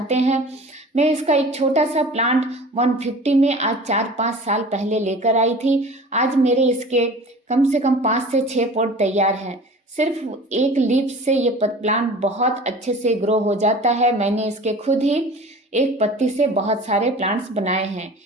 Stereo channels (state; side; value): normal; both; correlation 0.41